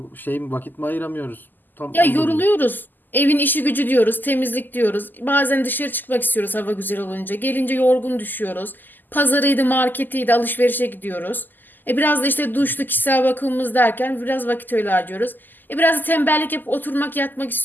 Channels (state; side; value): late; right; 0.088 ms